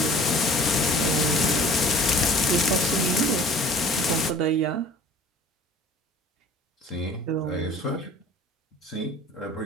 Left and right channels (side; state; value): both; normal; correlation 0.48